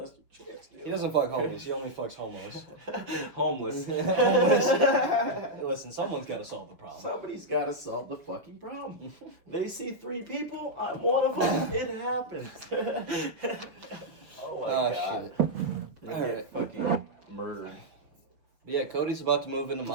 Chance Nielsen. He doesn't fuck homies. He only fucks homos. Homeless. Homeless. Listen, someone's got to solve the problem. Somebody's got to solve the fucking problem. They see 3 people. I'm one of them. It happens. Oh my god. Shit. They All get right. fucking murdered. But yeah, Cody's about to move into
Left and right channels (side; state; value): left; late; 5.8 ms